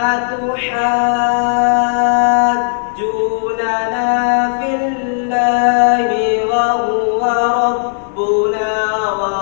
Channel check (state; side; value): silent; right; digital silence